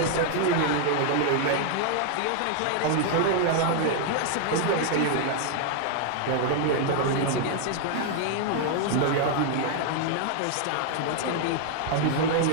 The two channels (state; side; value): different; both; correlation 0.00